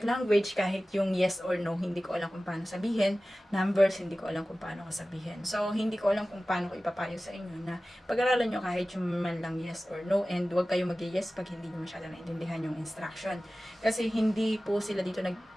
language, kahit yung yes or no, hindi ko alam kung paano sabihin. Numbers, hindi ko alam kung paano ko sabihin. So, hindi ko alam kung paano ko ipapayo sa inyo na pag-aralan nyo kahit yung man lang yes or no, and huwag kayo mag-yes pag hindi nyo masyado naintindihan yung instruction. Kasi hindi po sila dito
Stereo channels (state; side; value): normal; both; correlation 0.96